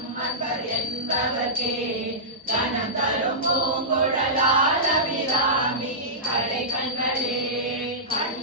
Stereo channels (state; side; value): normal; both; correlation -0.16